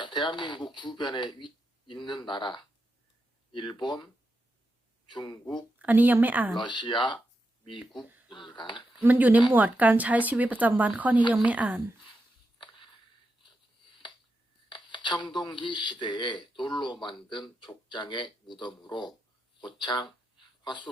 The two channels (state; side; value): normal; both; correlation 0.86